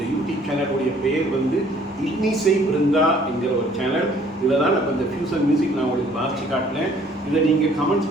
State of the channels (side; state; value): both; normal; correlation 0.59